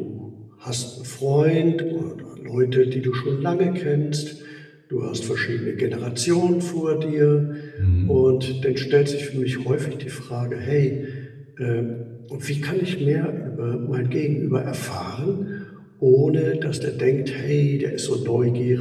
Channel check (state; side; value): identical; both; correlation 1.00